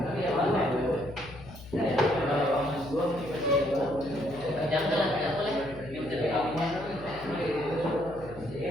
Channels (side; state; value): left; noise; hum, 16 dB below the sound